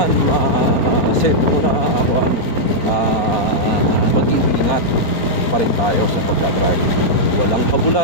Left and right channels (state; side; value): late; right; 4.4 ms